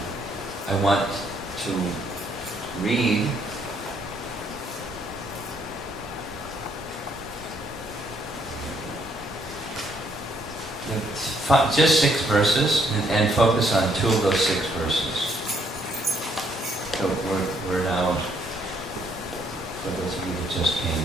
want to read just 6 verses and focus on 2 of those 6 verses. So we're now, for those of you that just came,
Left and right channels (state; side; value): noise; left; rumble, 25 dB below the sound